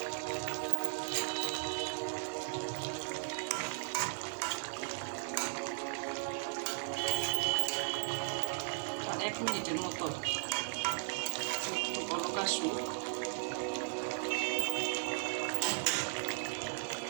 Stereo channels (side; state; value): left; silent; 53 dB below the other